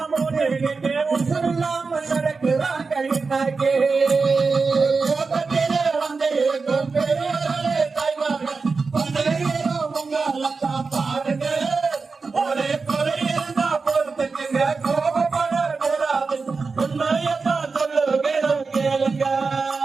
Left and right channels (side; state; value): left; quieter; 4.5 dB